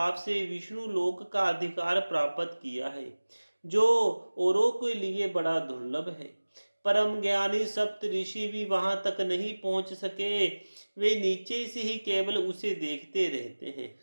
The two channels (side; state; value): both; inverted; correlation -1.00